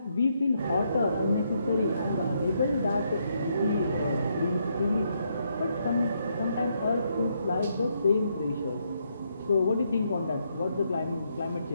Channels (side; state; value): both; inverted; correlation -0.76